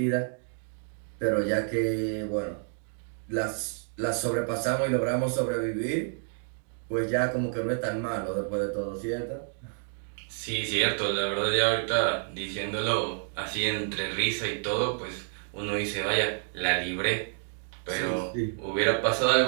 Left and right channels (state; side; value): silent; left; 57 dB below the other